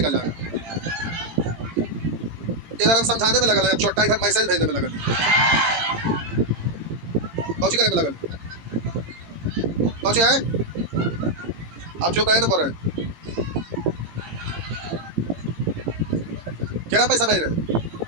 जाएगा। इधर हम समझाने में लगा, छोटा इधर मैसेज भेजने में लगा, कौची करने में लगा, कौची है। आप चुप रहे ना, बोल रहे क्या पैसा भेज रहे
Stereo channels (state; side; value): late; left; 18 ms